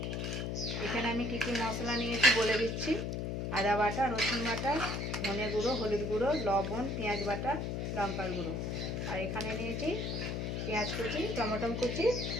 এখানে আমি কি কি মশলা নিয়েছি বলে দিচ্ছি। আদা বাটা, রসুন বাটা, ধনে গুঁড়ো, হলুদ গুঁড়ো, লবণ, পেঁয়াজ বাটা, লঙ্কার গুঁড়ো। আর এখানে নিয়েছি পেঁয়াজ কুচি, টমেটো কুচি,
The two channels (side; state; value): left; noise; hum, 2 dB below the sound